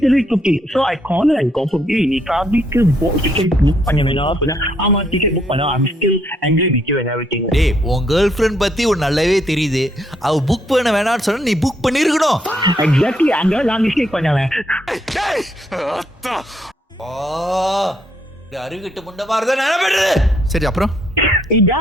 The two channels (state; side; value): normal; both; correlation 0.72